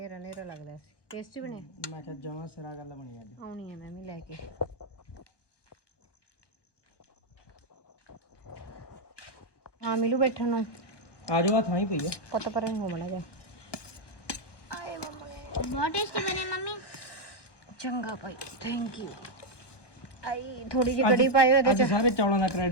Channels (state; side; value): late; right; 1.2 ms